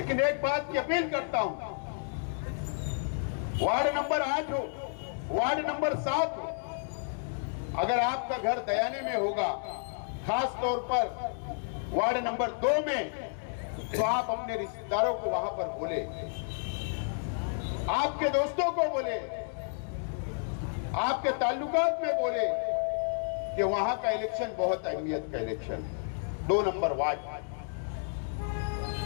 एक बात की अपील करता हूं। वार्ड नंबर 8 हो, वार्ड नंबर 7 हो, अगर आपका घर दयाने में होगा, खास तौर पर वार्ड नंबर 2 में, तो आप अपने रिश्तेदारों को वहां पर बोले, आपके दोस्तों को बोले, आपके ताल्लुकात में बोले कि वहां का इलेक्शन बहुत अहमियत का इलेक्शन है। 2 नंबर वार्ड,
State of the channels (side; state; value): right; silent; digital silence